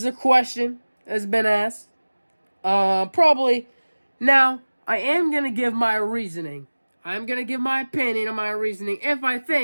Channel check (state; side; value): inverted; both; correlation -1.00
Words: a question that's been asked. Probably. Now, I am going to give my reasoning. I'm going to give my opinion on my reasoning if I